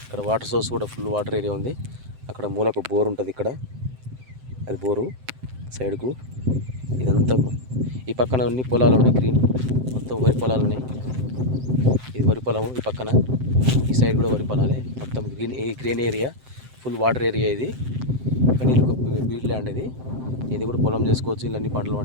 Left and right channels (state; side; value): late; left; 7.8 ms